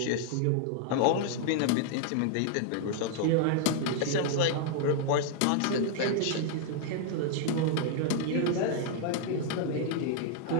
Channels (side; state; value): both; different; correlation 0.00